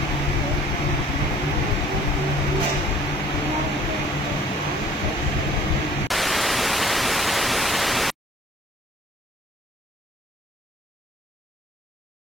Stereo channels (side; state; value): both; normal; correlation 0.53